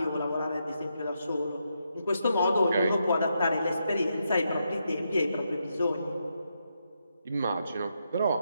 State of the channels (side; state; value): both; inverted; correlation -0.82